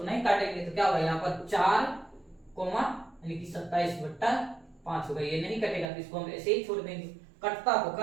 नहीं काटेंगे, तो क्या होगा यहाँ पर 4 कोमा यानी कि 27/5 होगा। ये नहीं कटेगा तो इसको हम ऐसे ही छोड़ देंगे, कटता तो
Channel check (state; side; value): drops out; left; at 5.9 s